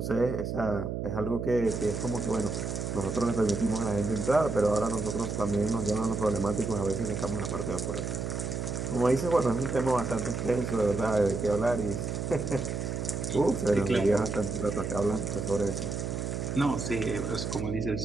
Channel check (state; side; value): noise; right; hum, 3 dB below the sound